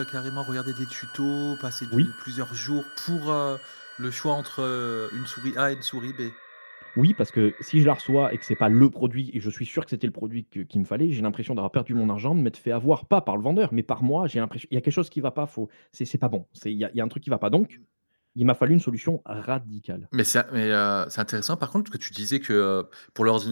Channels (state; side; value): inverted; both; correlation -1.00